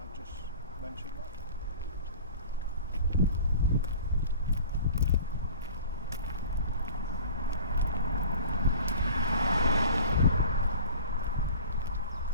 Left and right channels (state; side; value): inverted; both; correlation -0.42